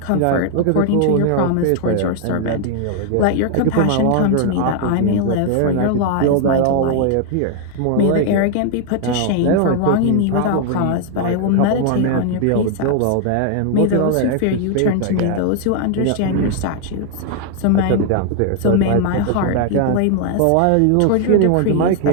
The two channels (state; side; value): different; both; correlation 0.00